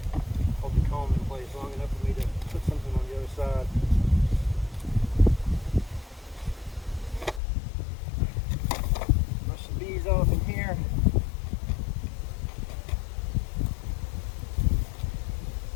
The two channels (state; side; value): drops out; right; at 7.4 s